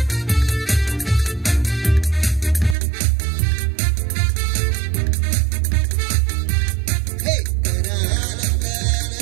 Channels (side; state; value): left; drops out; at 2.8 s